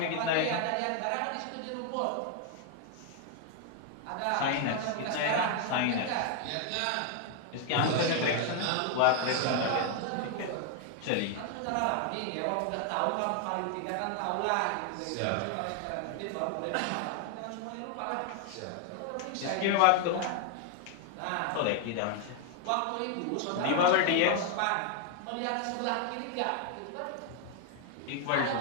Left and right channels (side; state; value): both; different; correlation 0.00